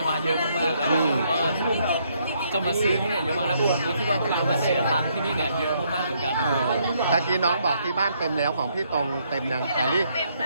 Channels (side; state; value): both; inverted; correlation -0.71